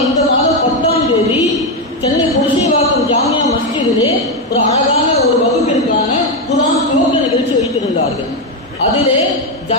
இந்த மாதம் 10ஆம் தேதி சென்னை புரசைவாக்கம் ஜாமியா மஸ்ஜிதிலே ஒரு அழகான ஒரு வகுப்பிற்கான குர்ஆன் துவக்க நிகழ்ச்சி வைத்திருந்தார்கள். அதிலே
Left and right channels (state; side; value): normal; both; correlation 0.07